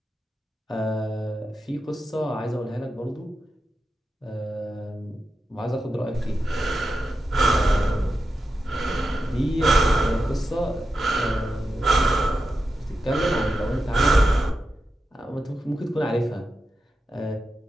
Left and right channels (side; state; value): both; normal; correlation 0.89